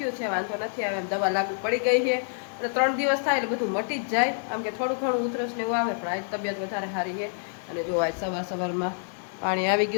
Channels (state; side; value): silent; right; digital silence